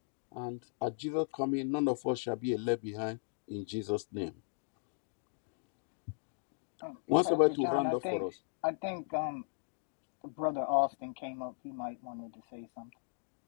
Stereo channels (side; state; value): right; silent; digital silence